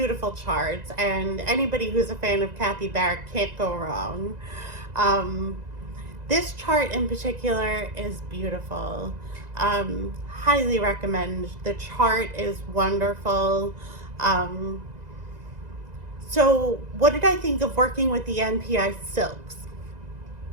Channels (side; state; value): left; late; 2.0 ms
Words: charts, and anybody who's a fan of Kathy Barrett can't go wrong. Um, this chart in particular is beautiful. Highly recommend. The chart is wonderful. Um, so, what did I think of working with the NPI Silks?